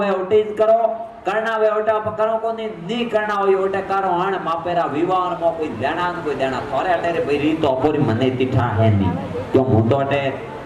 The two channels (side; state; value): both; identical; correlation 1.00